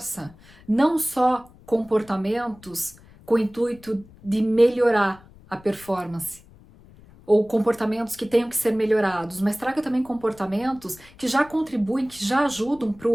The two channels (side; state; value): left; noise; rumble, 24 dB below the sound